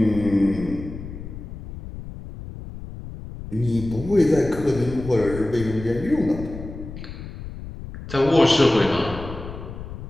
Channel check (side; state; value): left; noise; rumble, 11 dB below the sound